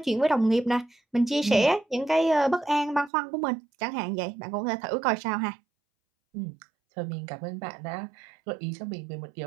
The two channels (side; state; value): left; drops out; at 3.1 s